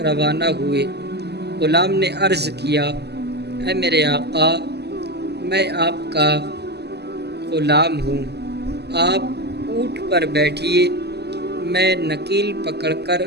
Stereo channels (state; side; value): late; left; 0.49 ms